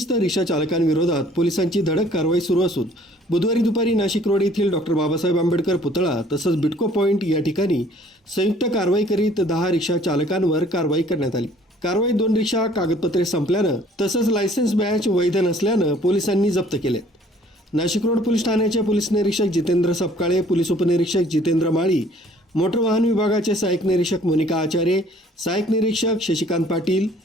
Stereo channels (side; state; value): both; normal; correlation 0.57